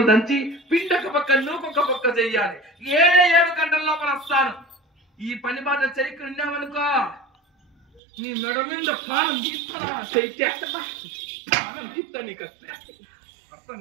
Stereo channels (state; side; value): drops out; left; at 8.0 s